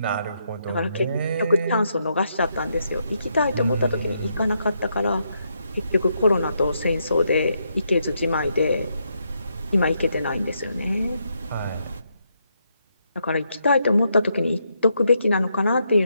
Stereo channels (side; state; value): both; inverted; correlation -0.79